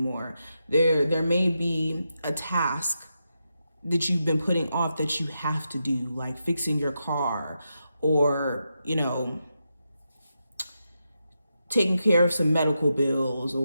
There may be a task that you've been putting off that you have to do, like fixing your car or, taking care of some medical bills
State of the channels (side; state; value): both; inverted; correlation -0.86